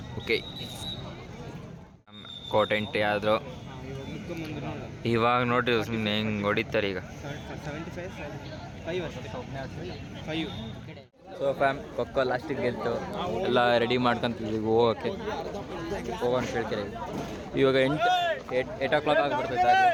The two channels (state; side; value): identical; both; correlation 1.00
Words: ಓಕೆ, ಕೋಟ್ ಎಂಟ್ರಿ ಆದರು. ಇವಾಗ ನೋಡ್ರಿ ಸುಮ್ಮನೆ ಹೆಂಗೆ ಹೊಡಿತಾರೆ ಈಗ. ಸೊ ಫ್ಯಾಮ್ ಖೋಖೋ ಲಾಸ್ಟಿಗೆ ಗೆಲ್ತು. ಎಲ್ಲ ರೆಡಿ ಮಾಡ್ಕೊಂತಿದ್ವಿ ಹೋಗೋಕ್ಕೆ. ಹೋಗೋಣ ಕೇಳ್ತೀರಿ. ಇವಾಗ 8 o'clock ಆಗಿಬಿಡ್ತೈತೆ.